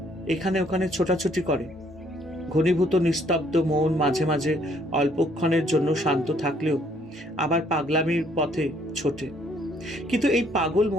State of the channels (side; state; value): both; normal; correlation 0.65